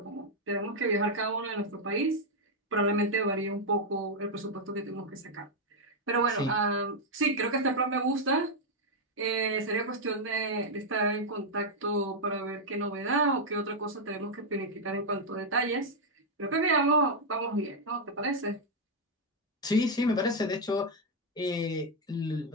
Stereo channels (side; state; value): both; normal; correlation -0.01